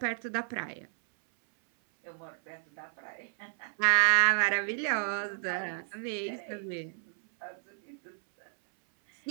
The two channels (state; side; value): silent; left; 57 dB below the other